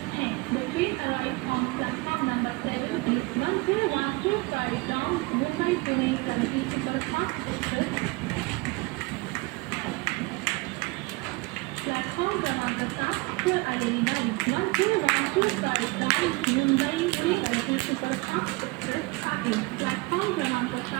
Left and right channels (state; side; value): quieter; left; 24.8 dB